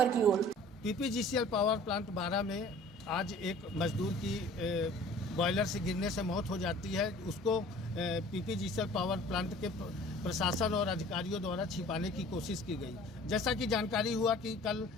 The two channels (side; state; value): both; normal; correlation 0.48